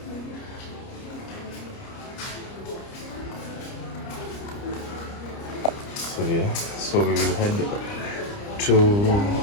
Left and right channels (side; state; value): right; late; 29 ms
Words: So yeah, so we will head to